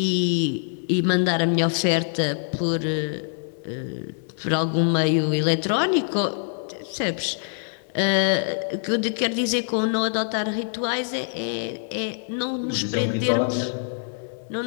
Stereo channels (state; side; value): silent; right; digital silence